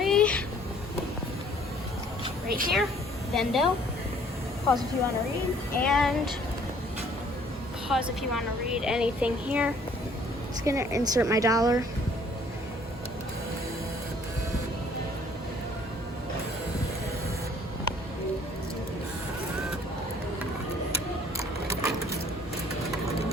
right here, Vendo. Pause if you want to read, and pause if you want to read anything here. Just gonna insert my dollar.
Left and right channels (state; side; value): normal; both; correlation 0.58